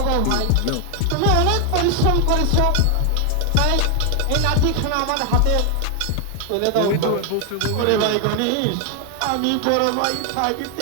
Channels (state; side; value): different; both; correlation 0.00